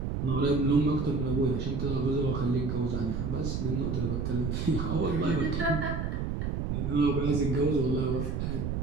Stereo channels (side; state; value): right; noise; rumble, 1 dB below the sound